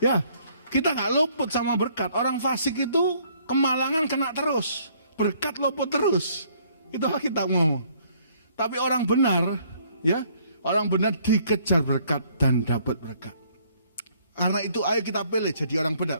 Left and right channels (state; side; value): inverted; both; correlation -0.63